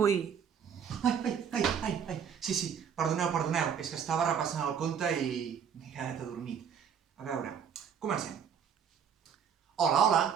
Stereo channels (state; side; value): quieter; left; 7.6 dB